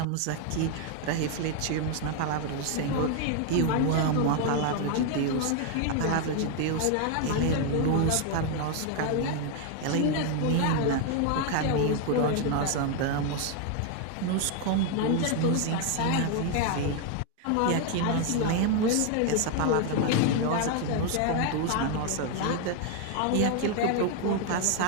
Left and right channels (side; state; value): both; different; correlation 0.01